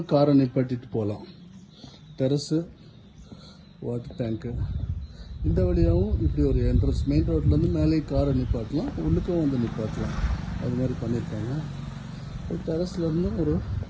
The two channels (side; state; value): both; identical; correlation 1.00